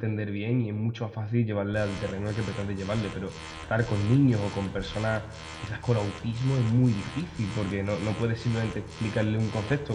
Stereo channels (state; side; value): identical; both; correlation 1.00